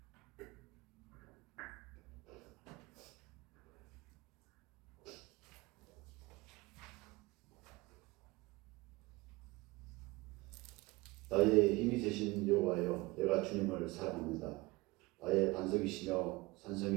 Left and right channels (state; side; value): quieter; left; 22.3 dB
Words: 나의 힘이 되신 여호와여, 내가 주님을 사랑합니다. 나의 반석이시며